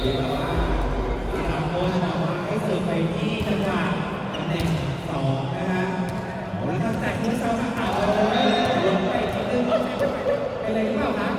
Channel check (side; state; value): both; identical; correlation 1.00